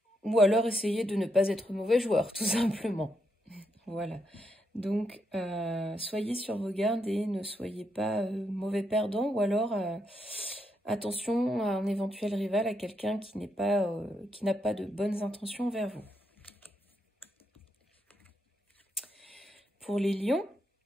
ou alors essayez de ne pas être mauvais joueur, tout simplement. Voilà. Donc, soyez sur vos gardes et ne soyez pas mauvais perdant, ou alors attention à un éventuel rival, à quelqu'un qui n'a pas de bonnes intentions envers vous. Pour les lions,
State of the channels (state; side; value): normal; both; correlation 0.80